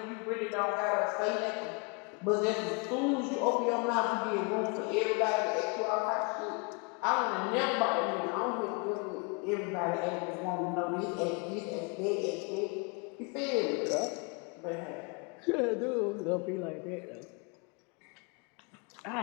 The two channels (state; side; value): quieter; right; 31.8 dB